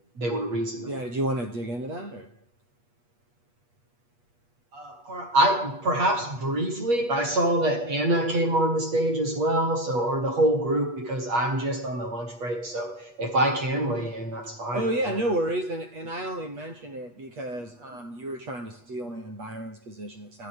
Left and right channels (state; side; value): late; left; 8.3 ms